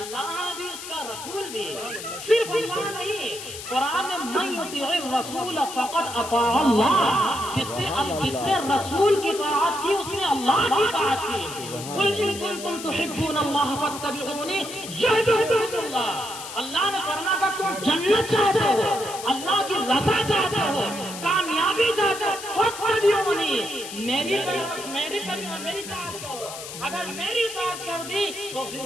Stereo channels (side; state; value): left; noise; hiss, 10 dB below the sound